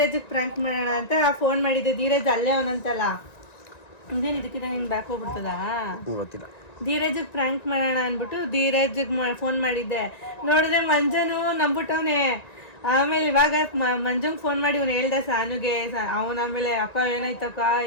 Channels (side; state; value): right; late; 1.9 ms